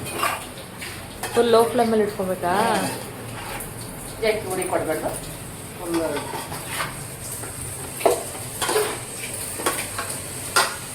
ಫುಲ್ ಲೋ ಫ್ಲೇಮಲ್ಲಿ ಇಟ್ಕೊಬೇಕಾ? ಜಾಸ್ತಿ ಉಡಿ ಕೊಡಬೇಕು.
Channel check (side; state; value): both; identical; correlation 1.00